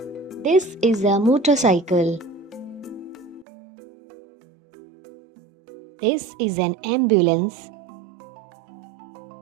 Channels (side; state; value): left; drops out; at 3.5 s